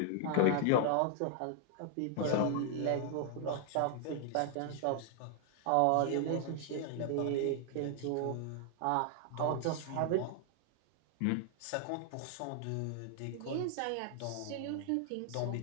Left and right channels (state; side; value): different; both; correlation 0.00